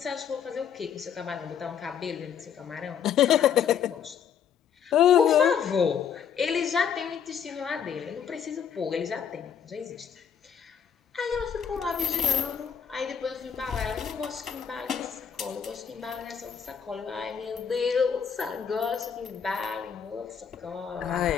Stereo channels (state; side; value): quieter; right; 7.7 dB